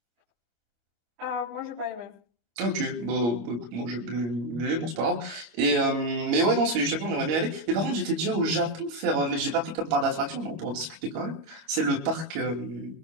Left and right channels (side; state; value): left; late; 25 ms